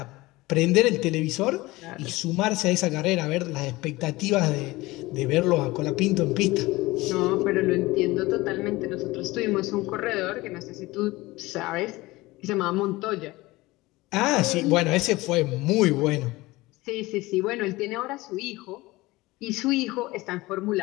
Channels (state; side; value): quieter; right; 20.3 dB